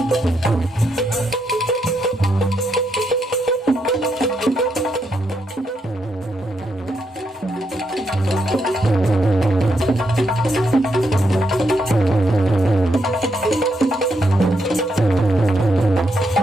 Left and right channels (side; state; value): both; normal; correlation 0.79